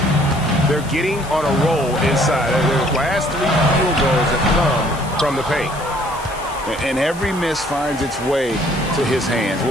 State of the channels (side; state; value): left; noise; hiss, 18 dB below the sound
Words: They're getting on a roll inside. Their last 3 field goals have come from the paint. And every miss finds its way to his hands.